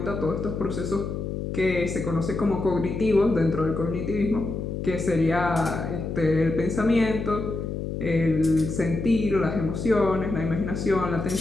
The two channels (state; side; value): noise; left; hum, 4 dB below the sound